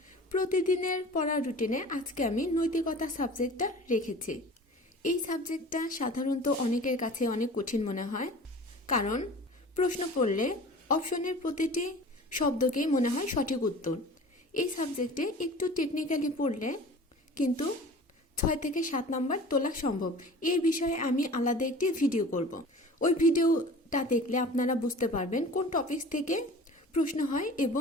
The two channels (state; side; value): normal; both; correlation 0.41